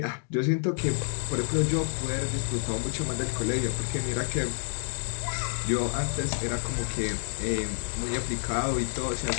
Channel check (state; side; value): silent; right; digital silence